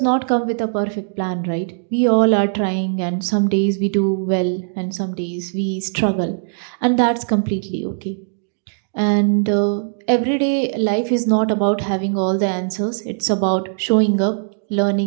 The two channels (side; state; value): left; silent; digital silence